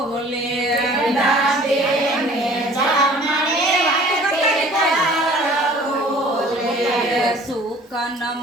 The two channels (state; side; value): normal; both; correlation 0.50